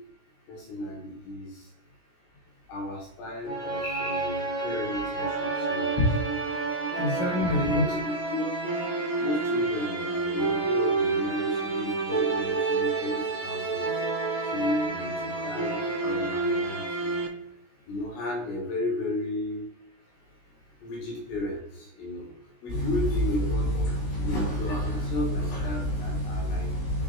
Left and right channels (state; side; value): late; right; 16 ms